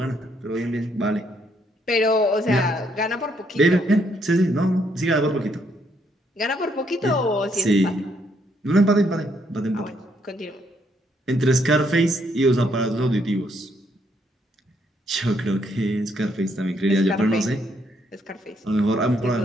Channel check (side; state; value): both; normal; correlation 0.73